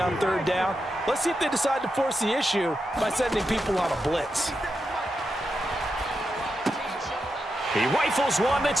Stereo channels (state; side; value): normal; both; correlation 0.87